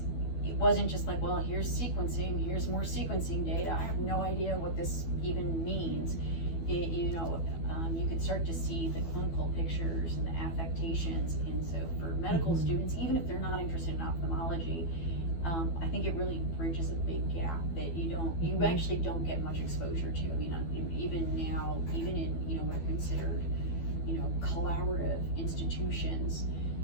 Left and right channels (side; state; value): right; late; 12 ms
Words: it wasn't just like, well, here's sequencing, here's more sequencing data. I have no idea what this even means. You could start to see the clinical pictures and the affectations. And so for medical students, even if they're not interested in ophthalmology, I think it really bridges a big gap that you actually don't get much exposure to. I mean, even now, even in, what are considered, collaborative institutions,